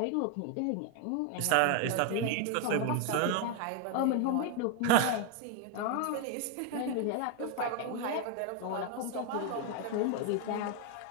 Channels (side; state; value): both; different; correlation 0.01